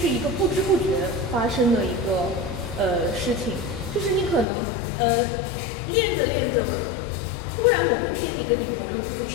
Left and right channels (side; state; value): right; drops out; at 4.5 s